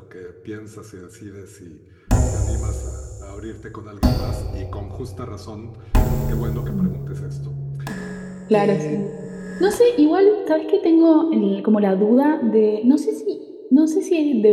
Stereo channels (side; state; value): both; identical; correlation 1.00